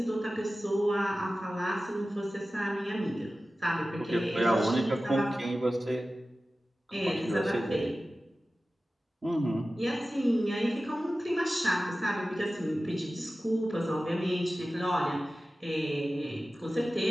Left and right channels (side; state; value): both; normal; correlation 0.95